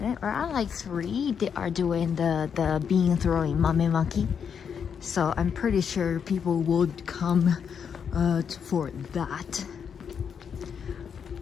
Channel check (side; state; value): right; quieter; 7.2 dB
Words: around like 3, they are doing the bean throwing mamemaki. So I'm pretty sure people would come for that.